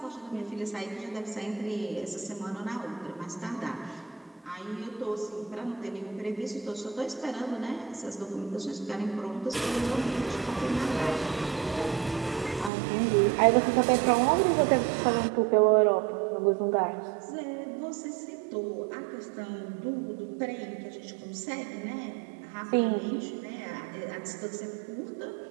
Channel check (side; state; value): left; drops out; at 12.7 s